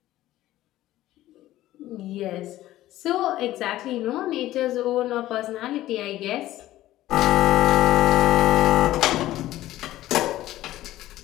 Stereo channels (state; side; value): quieter; right; 15.0 dB